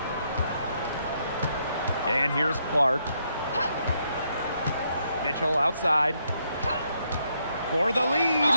And here's Clark. Mitchell outside for the lead.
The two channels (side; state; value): both; inverted; correlation -0.75